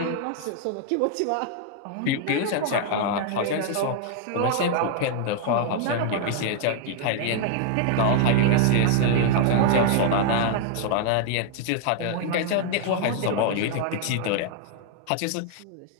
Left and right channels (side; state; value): both; different; correlation 0.00